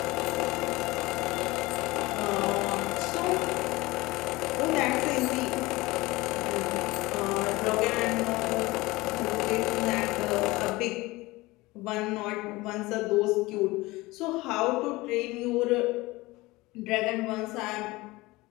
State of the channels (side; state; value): right; quieter; 21.0 dB